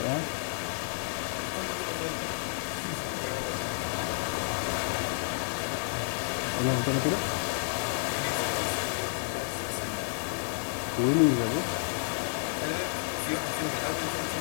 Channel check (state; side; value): silent; right; digital silence